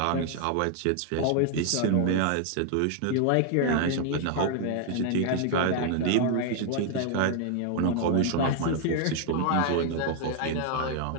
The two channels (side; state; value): both; different; correlation 0.00